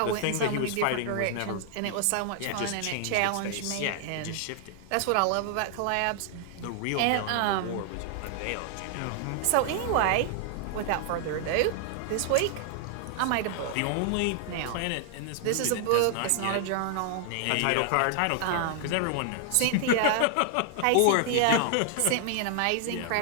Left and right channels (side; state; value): both; different; correlation -0.01